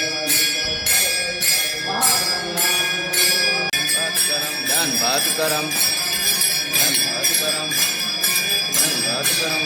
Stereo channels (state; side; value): identical; both; correlation 1.00